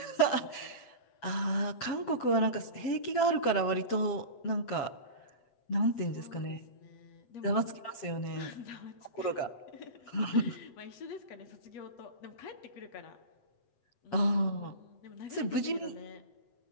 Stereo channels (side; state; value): right; late; 7.9 ms